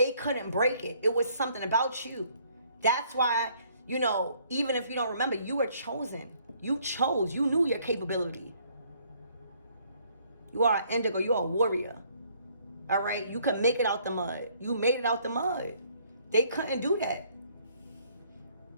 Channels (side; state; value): both; inverted; correlation -0.64